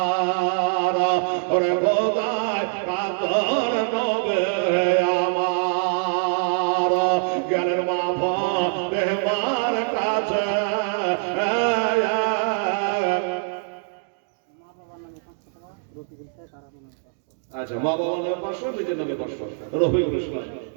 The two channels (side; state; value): left; silent; digital silence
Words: ওরে খোদা আচ্ছা, মা বাবার নামে 500, নিজের নামে 500। রফিকুল ইসলাম,